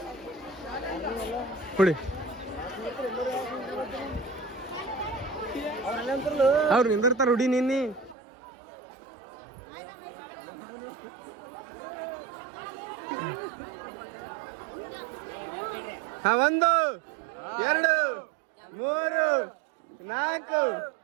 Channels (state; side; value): drops out; left; at 8.2 s